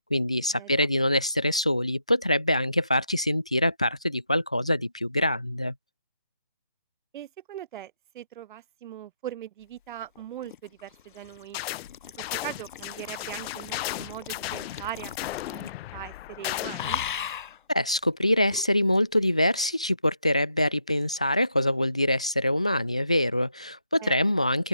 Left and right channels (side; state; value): both; inverted; correlation -0.76